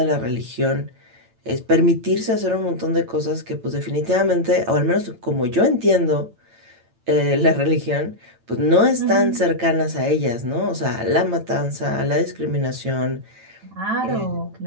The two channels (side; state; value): left; late; 8.9 ms